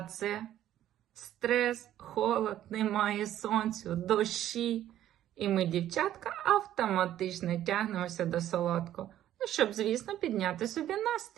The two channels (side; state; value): left; quieter; 12.2 dB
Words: це стрес, холод, немає сонцю, дощі. І ми, дівчатка, автоматично тягнемося до солодкого, щоб, звісно, підняти собі